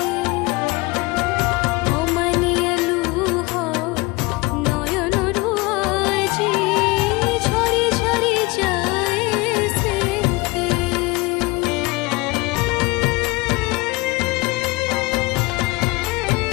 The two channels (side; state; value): right; quieter; 23.9 dB